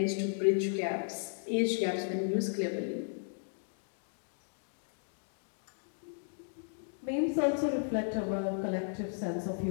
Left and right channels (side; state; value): right; silent; digital silence